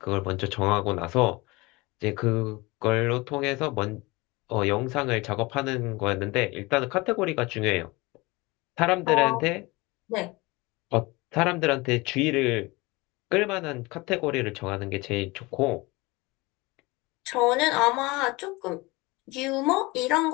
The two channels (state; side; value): quieter; right; 23.4 dB